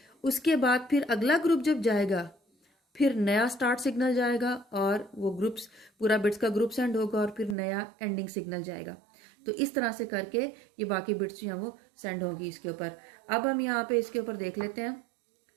उसके बाद फिर अगला ग्रुप जब जाएगा फिर नया स्टार्ट सिग्नल जाएगा और वो ग्रुप्स पूरा बिट्स का ग्रुप सेंड होगा और फिर नया एंडिंग सिग्नल जाएगा। तो इस तरह से करके ये बाकी बिट्स जो हैं वो सेंड होगी इसके ऊपर। अब हम यहाँ पे इसके ऊपर देख लेते हैं।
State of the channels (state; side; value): drops out; left; at 7.6 s